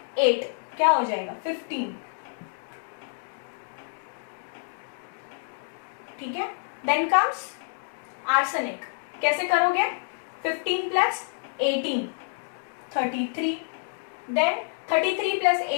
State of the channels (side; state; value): right; silent; digital silence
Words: 8 क्या हो जाएगा? 15, ठीक है। देन कम्स आर्सेनिक, कैसे करोगे? 15 plus 18 33, then 33 plus